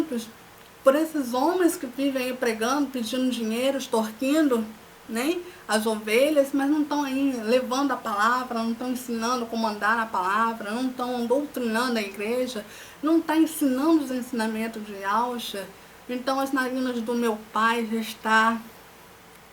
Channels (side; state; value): both; identical; correlation 1.00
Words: por esses homens que vivem aí pregando, pedindo dinheiro, extorquindo, né, as ovelhas, mas não estão aí levando a palavra, não estão ensinando como andar na palavra, não estão doutrinando a igreja, não estão ensinando os ensinamentos de Yahshua. Então as narinas do meu Pai já está